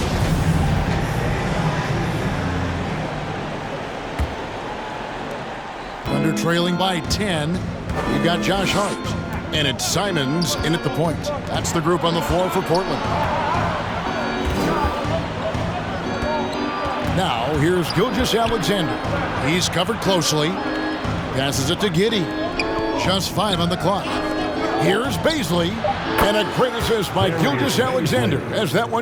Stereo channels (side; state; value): both; identical; correlation 1.00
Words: Under trailing by 10. You've got Josh Hart. And it's Simons in at the point. That's the group on the floor for Portland. Now, here's Gilgeous-Alexander. He's covered closely. Passes it to Giddey. Just 5 on the clock. Here's Bazley. And a great assist by Gilgeous-Alexander as that